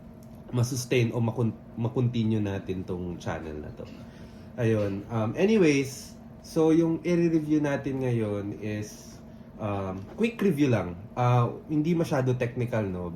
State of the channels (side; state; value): both; identical; correlation 1.00